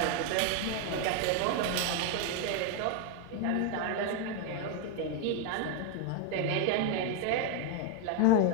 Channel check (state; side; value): different; both; correlation 0.01